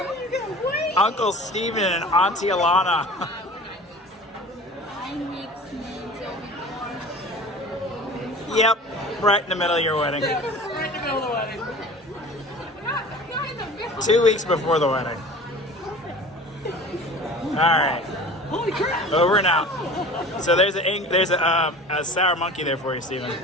Uncle Steven and Auntie Alana. Yep, right in the middle of your wedding. Right in the middle of the wedding. 2 weeks before the wedding. All right. Holy crap! Over and out. So there's a sour monkey there for you, Steven.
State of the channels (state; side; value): normal; both; correlation 0.40